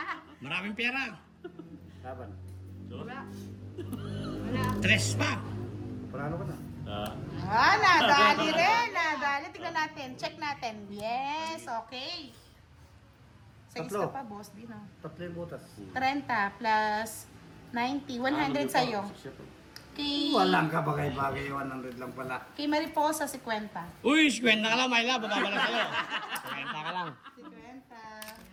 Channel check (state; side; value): identical; both; correlation 1.00